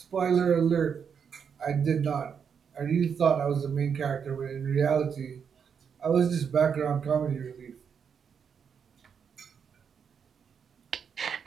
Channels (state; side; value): quieter; left; 7.0 dB